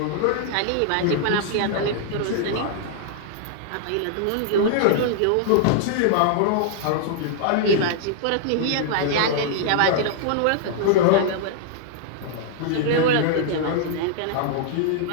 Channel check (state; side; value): different; both; correlation -0.01